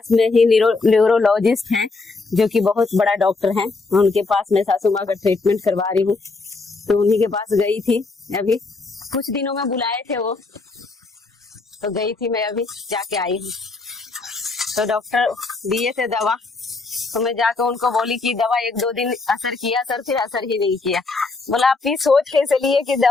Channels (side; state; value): right; quieter; 3.8 dB